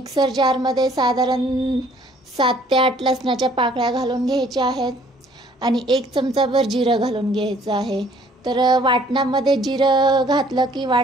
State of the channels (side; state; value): both; normal; correlation 0.59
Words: जारमध्ये साधारण 7 ते 8 लसणाच्या पाकळ्या घालून घ्यायच्या आहेत आणि 1 चमचाभर जिरं घालून घ्यायचं आहे। तर वाटणामध्ये जिरं घातलं की